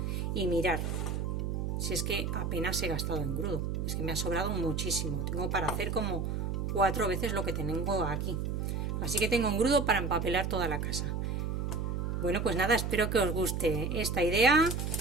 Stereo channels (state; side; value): noise; right; hum, 1 dB below the sound